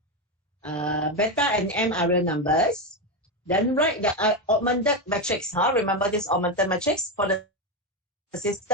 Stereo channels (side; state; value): both; normal; correlation 0.12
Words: Beta and m are real numbers. Then write the augmented matrix. Remember this augmented matrix for the